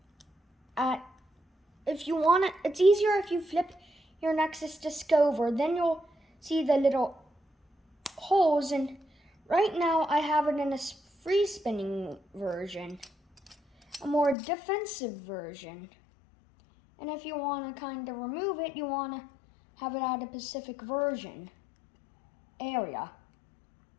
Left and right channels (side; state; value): right; drops out; at 14.4 s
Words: if you want to, it's easier if you flip your Nexus disc over, then you'll see the little holes, and right now I have it in a free spinning version, a more defensive version. And if you want to kind of remove it, you want to have it at a Pacific version area.